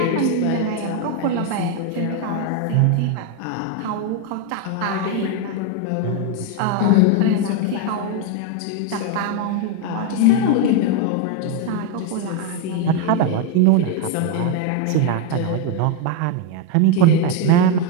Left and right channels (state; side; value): different; both; correlation 0.01